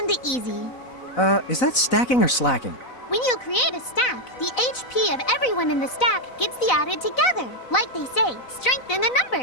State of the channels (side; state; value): right; late; 4.0 ms